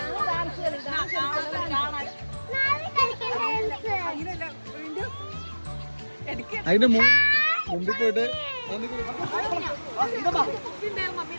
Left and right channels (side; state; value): both; inverted; correlation -1.00